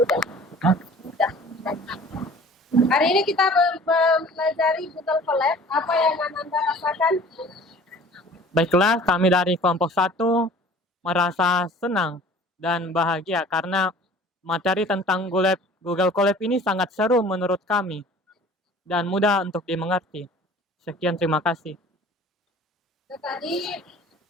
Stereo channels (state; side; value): normal; both; correlation 0.47